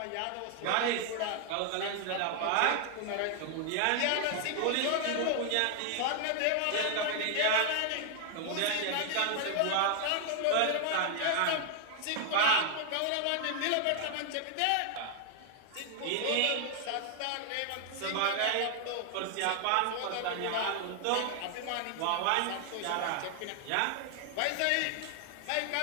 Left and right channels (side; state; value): both; different; correlation 0.00